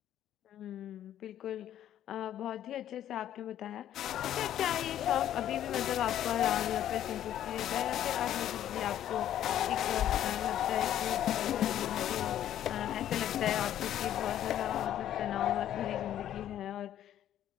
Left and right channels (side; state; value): right; quieter; 11.4 dB